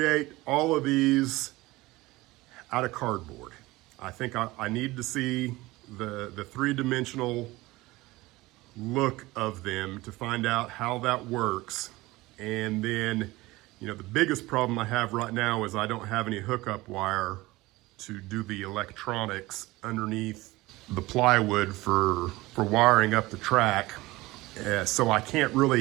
all of these out of cardboard. I think I need to see the 3-dimensional look of them to find out how that works. And then, you know, the biggest problem I have right now is I don't have any hookup wire to do the electronics underneath the plywood for wiring up the track. So I can't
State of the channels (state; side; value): quieter; left; 20.0 dB